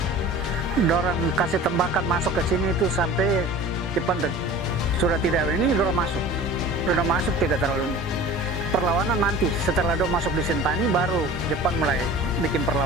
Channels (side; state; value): both; normal; correlation 0.40